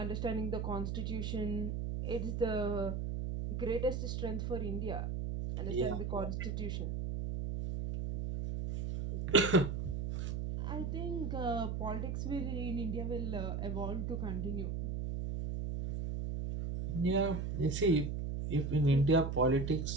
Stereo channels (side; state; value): right; noise; hum, 2 dB below the sound